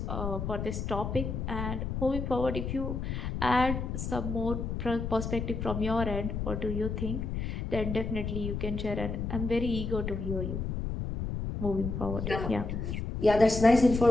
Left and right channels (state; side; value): noise; left; rumble, 3 dB below the sound